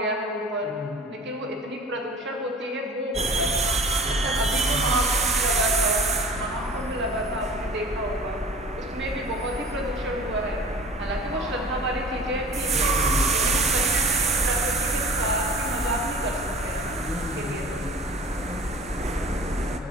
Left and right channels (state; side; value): normal; both; correlation 0.42